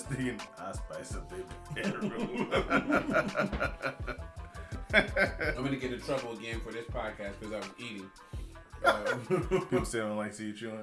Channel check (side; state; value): both; identical; correlation 1.00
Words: thinking, I'll spice up their bedroom. I'm gonna get in trouble again for this podcast because I was eating. People say they don't like to see you